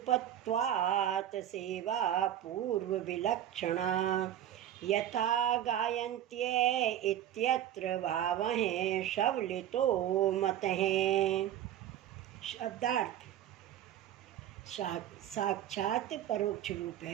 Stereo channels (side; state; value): left; quieter; 11.3 dB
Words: सेवा पूर्व विलक्षणा यथा गायन्त्ये इत्यत्र भावः शवलितो मतः। शब्दार्थ। साक्षात परोक्ष रूप